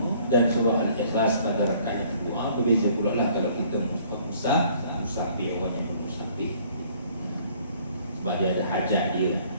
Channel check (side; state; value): both; inverted; correlation -0.58